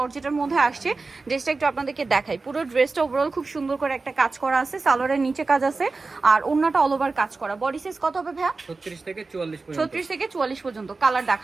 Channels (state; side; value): quieter; left; 3.9 dB